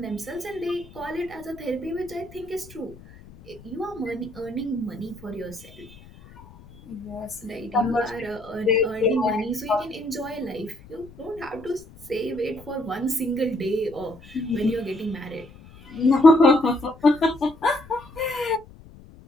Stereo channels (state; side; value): noise; left; rumble, 21 dB below the sound